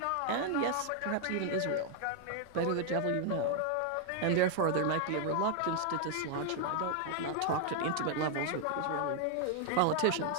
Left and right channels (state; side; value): different; both; correlation 0.00